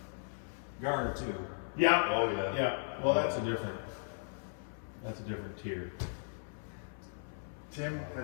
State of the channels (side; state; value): right; silent; 53 dB below the other